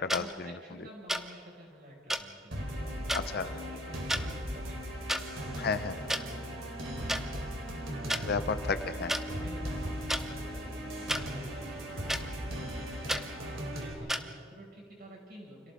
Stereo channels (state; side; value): normal; both; correlation 0.58